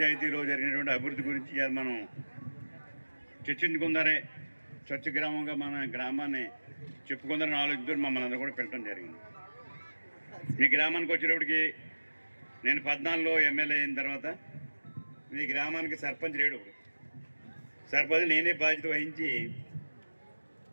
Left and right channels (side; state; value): both; inverted; correlation -1.00